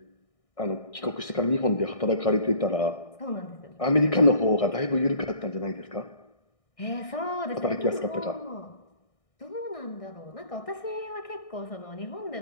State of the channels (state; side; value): late; right; 1.6 ms